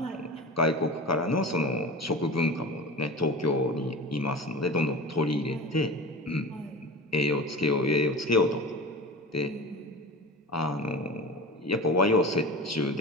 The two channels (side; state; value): both; normal; correlation 0.32